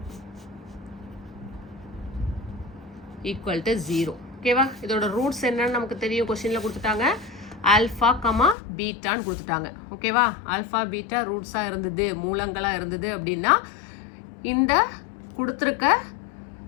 equal to 0. ஓகேவா, இதோட ரூட்ஸ் என்னன்னு நமக்கு தெரியும், கொஸ்டினில் கொடுத்துட்டாங்க ஆல்ஃபா, பீட்டான்னு கொடுத்துட்டாங்க. ஓகேவா, ஆல்ஃபா பீட்டா ரூட்ஸாக இருந்தது, மூலங்களாக இருந்தது அப்படின்னா இந்த கொடுத்துருக்க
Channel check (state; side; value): drops out; right; at 8.6 s